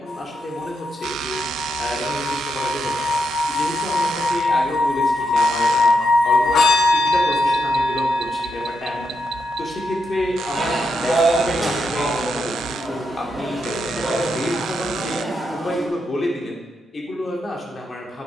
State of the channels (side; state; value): both; normal; correlation 0.83